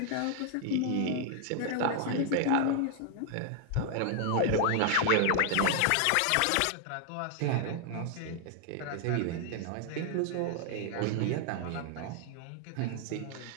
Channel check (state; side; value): different; both; correlation 0.00